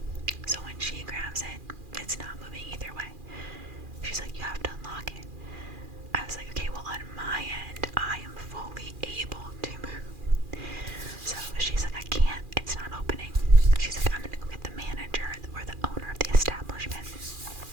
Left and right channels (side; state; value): left; late; 2.4 ms